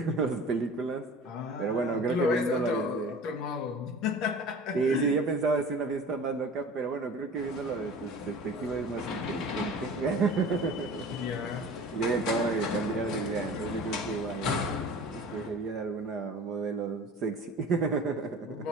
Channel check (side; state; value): both; normal; correlation 0.41